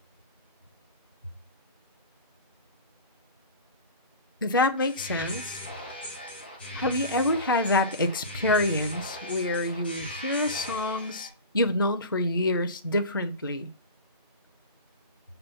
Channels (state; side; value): inverted; both; correlation -0.31